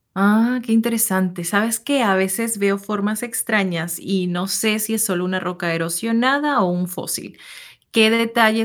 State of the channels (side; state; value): both; identical; correlation 1.00